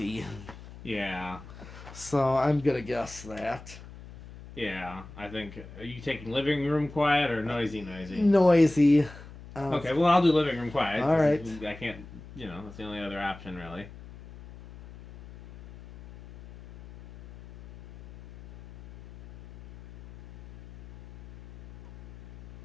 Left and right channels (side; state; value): left; noise; hum, 17 dB below the sound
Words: Yeah. So I'm going to guess that. Yeah, I think. Are you taking living room quiet or noisy? Noisy. Okay, well, I'll do living room quiet. All right. I can't, that's the only other option, really.